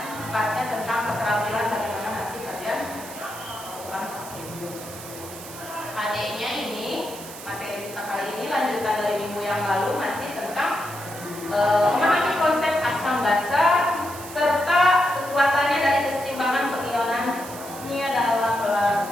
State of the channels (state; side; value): noise; right; hiss, 14 dB below the sound